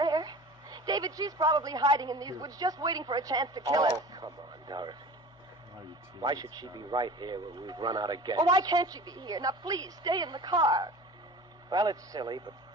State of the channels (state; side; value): normal; both; correlation 0.39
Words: David, she's probably hiding in these woods just waiting for a chance to kill us. Oh, come on, Dorothy. Why should she be right here when we've run out of gas? Oh, why can't she be here? Now, please, stay in the car. Well, it's silly, but